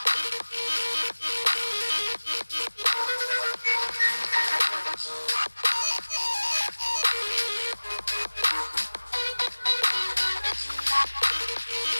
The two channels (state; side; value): inverted; both; correlation -1.00